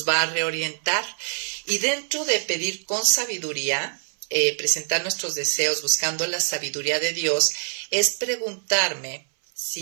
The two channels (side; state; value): left; silent; 62 dB below the other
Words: va a reorientar. Y dentro de pedir con sabiduría, presentar nuestros deseos buscando la sabiduría de Dios, es preguntarme